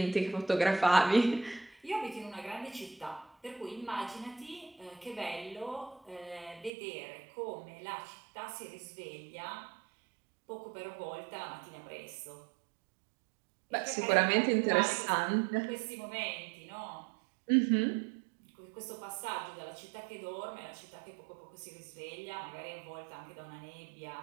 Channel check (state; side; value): drops out; left; at 6.7 s